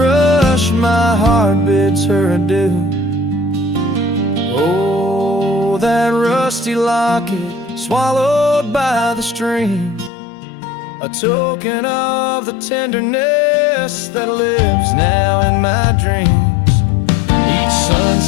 my heart bids her adieu. Oh, that rusty locket swallowed by the stream, a token of the tenderness that lives now in my dreams. Each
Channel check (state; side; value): drops out; right; at 10.1 s